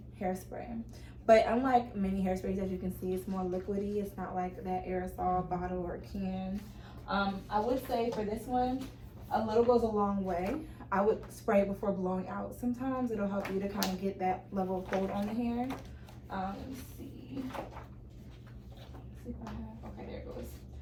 hairspray. But unlike many hairsprays, as you can see, it's more liquidy. It's not like that aerosol bottle or can. I would say for this one, a little goes a long way. I would spray it before blowing out sometimes. It'll help you to kind of get that level of hold on the hair. Let me see. Let's see if I have, okay, there it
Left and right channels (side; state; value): both; identical; correlation 1.00